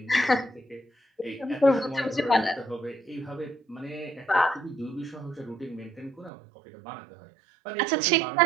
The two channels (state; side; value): drops out; left; at 6.3 s